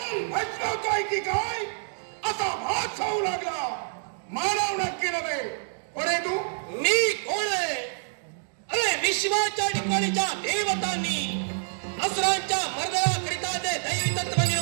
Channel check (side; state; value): left; silent; digital silence